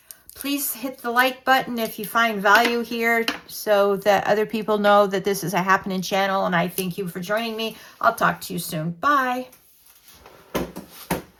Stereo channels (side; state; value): both; identical; correlation 1.00